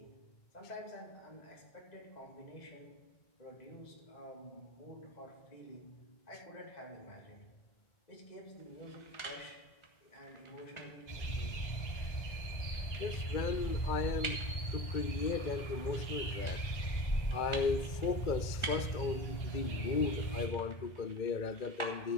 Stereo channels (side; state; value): right; late; 2.2 ms